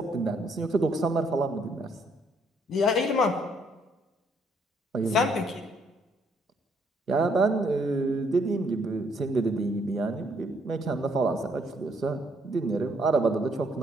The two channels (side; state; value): both; normal; correlation 0.69